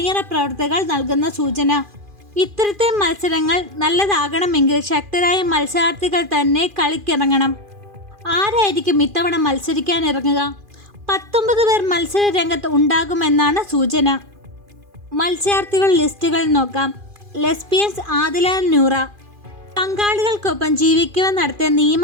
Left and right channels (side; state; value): left; late; 2.4 ms